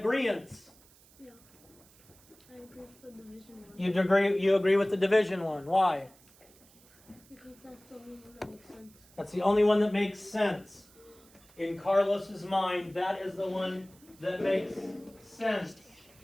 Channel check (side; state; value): right; noise; hiss, 27 dB below the sound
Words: I agree with the division one. You agree with the division one. Why? Because that's the only one that makes sense. That's the only one that makes sense. In Carlos's mind, that is the one that makes sense.